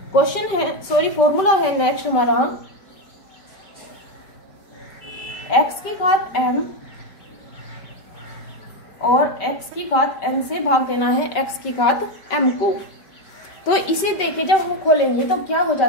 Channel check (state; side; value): late; right; 5.2 ms